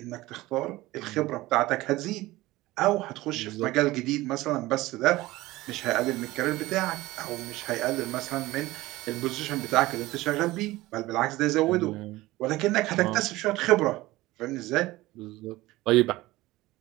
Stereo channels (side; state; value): left; quieter; 18.6 dB